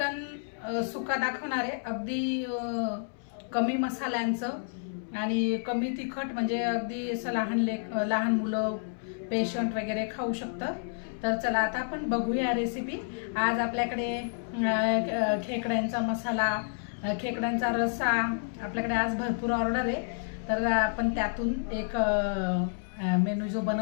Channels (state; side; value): silent; right; 58 dB below the other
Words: सुका दाखवणार आहे। अगदी कमी मसाल्यांचं आणि कमी तिखट, म्हणजे अगदी असं लहान मुलं पेशंट वगैरे खाऊ शकतं। तर चला आता आपण बघूया रेसिपी। आज आपल्याकडे खेकड्यांचा मसाला, खेकड्यांचा रस्सा आपल्याकडे आज भरपूर ऑर्डर आहे। तर आपण त्यातून एक मेनू जो